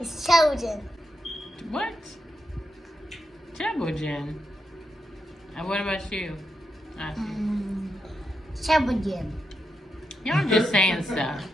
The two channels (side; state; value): both; normal; correlation 0.85